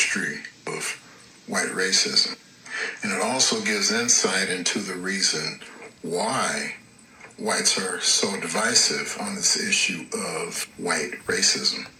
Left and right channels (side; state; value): both; identical; correlation 1.00